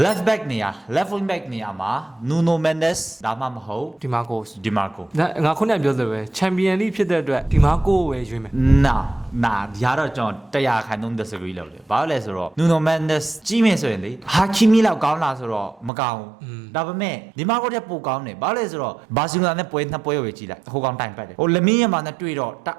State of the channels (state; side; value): drops out; left; at 15.9 s